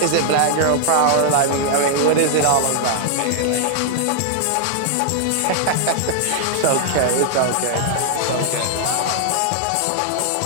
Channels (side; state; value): both; different; correlation -0.01